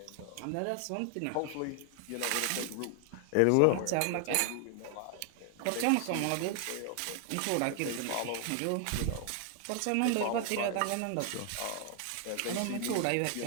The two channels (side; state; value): both; different; correlation 0.00